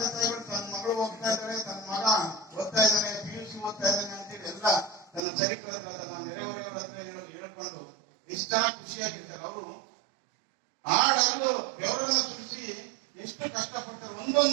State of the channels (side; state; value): left; drops out; at 5.2 s